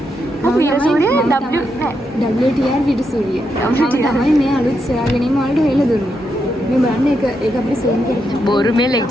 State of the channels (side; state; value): both; normal; correlation 0.82